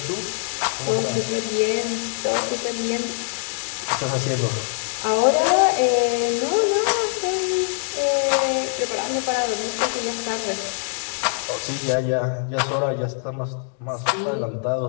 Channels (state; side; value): silent; right; digital silence